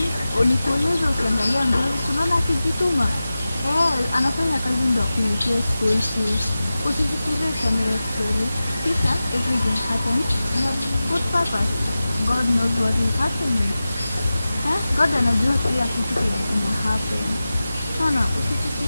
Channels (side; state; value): both; inverted; correlation -0.95